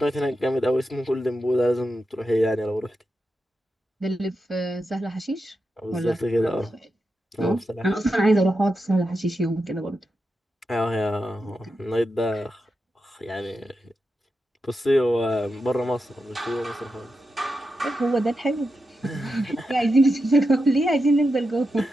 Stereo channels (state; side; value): normal; both; correlation 0.88